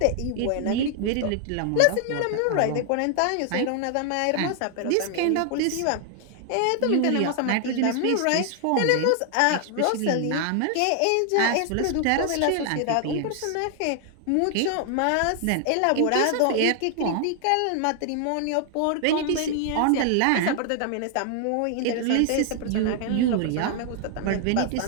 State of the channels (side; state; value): both; different; correlation 0.00